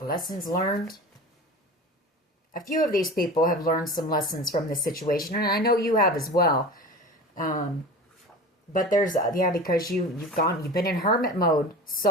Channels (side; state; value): both; normal; correlation 0.34